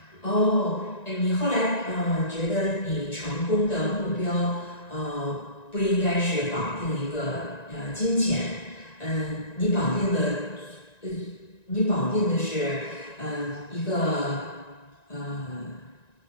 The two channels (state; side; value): late; right; 1.9 ms